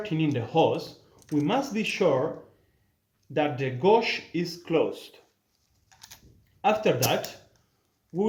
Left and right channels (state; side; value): identical; both; correlation 1.00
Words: in the hose, we must be sure that the gauge is closed. After that,